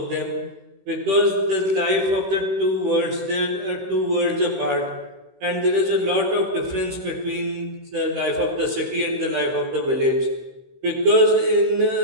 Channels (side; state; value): left; late; 16 ms